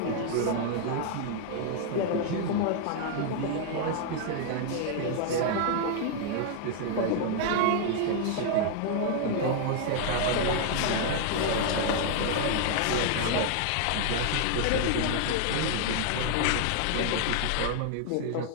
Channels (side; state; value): both; different; correlation 0.00